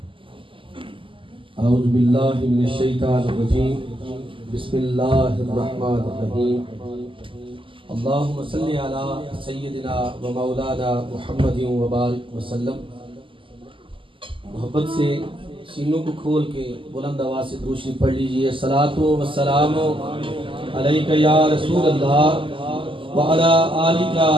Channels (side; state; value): left; late; 0.25 ms